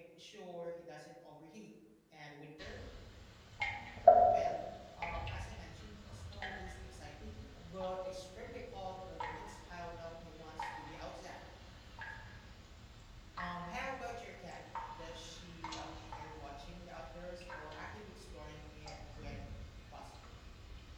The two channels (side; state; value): both; identical; correlation 1.00